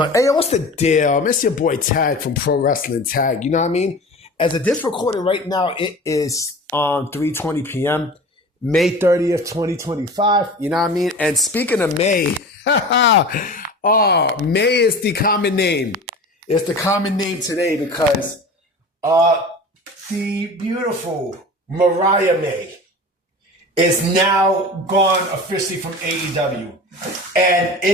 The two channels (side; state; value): both; normal; correlation 0.36